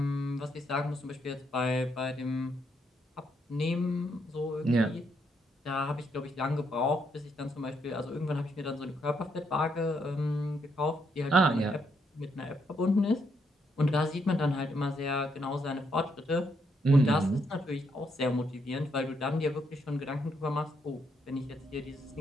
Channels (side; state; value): both; normal; correlation 0.75